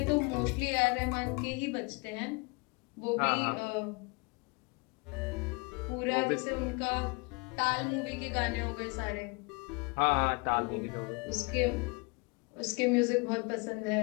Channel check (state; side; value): quieter; right; 30.0 dB